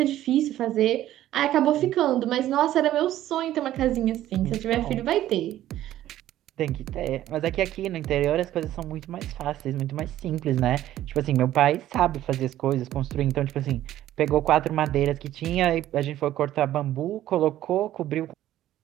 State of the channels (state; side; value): quieter; left; 13.3 dB